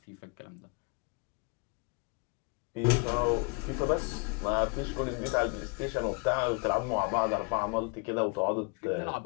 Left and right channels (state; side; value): quieter; right; 31.5 dB